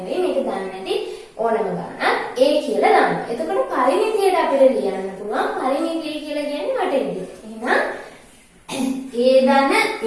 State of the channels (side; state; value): both; identical; correlation 1.00